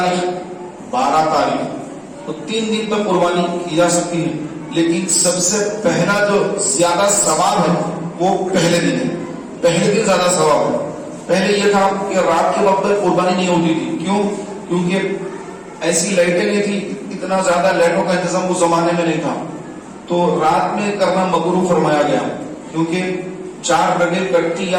12 تاریخ، تو 3 دن تک قربانی کی جا سکتی ہے، لیکن سب سے پہلا جو زیادہ ثواب ہے وہ پہلے دن ہے، پہلے دن زیادہ ثواب ہے۔ پہلے یہ تھا کہ رات کے وقت قربانی نہیں ہوتی تھی، کیوں؟ کیونکہ ایسی لائٹیں نہیں تھی، اتنا زیادہ لائٹوں کا انتظام اس زمانے میں نہیں تھا، تو رات میں کرنا مکروہ فرمایا گیا، کیونکہ 4 رگیں کٹتی یا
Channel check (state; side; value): identical; both; correlation 1.00